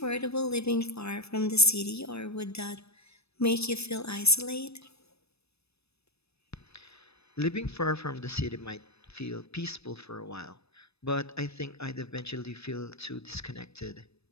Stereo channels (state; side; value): late; right; 0.79 ms